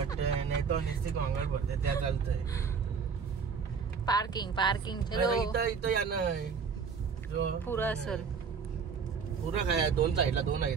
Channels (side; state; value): left; quieter; 5.9 dB